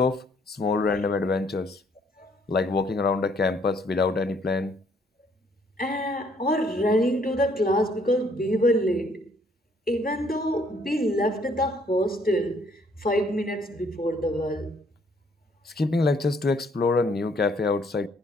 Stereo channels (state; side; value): normal; both; correlation 0.65